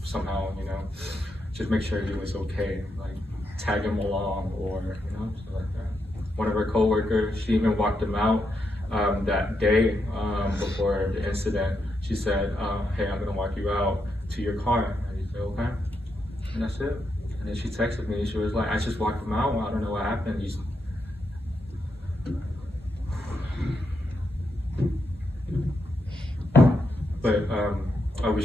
somehow, you know, just make sure he was okay, like tag him along or, you know, stuff like that. One of our coworkers, she even walked him out that day before the incident. She said, hey, I'm gonna walk you out to your car. And he said, okay. And that's it. And then she texted me, she was like, I just walked him out, I don't know what happened. But I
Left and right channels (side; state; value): both; normal; correlation 0.82